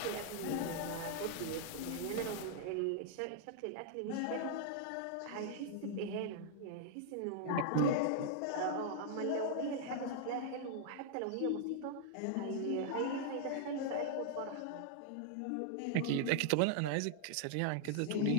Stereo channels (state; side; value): different; both; correlation -0.01